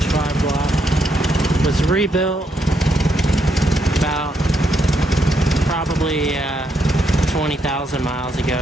block. It was rebuilt about probably 20,000 miles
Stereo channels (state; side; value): normal; both; correlation 0.77